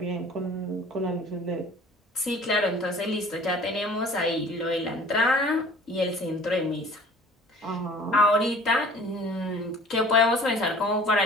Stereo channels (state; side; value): normal; both; correlation 0.48